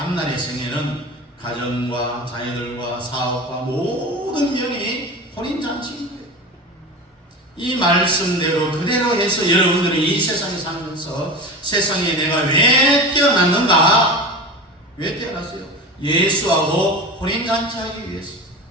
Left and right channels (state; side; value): normal; both; correlation 0.29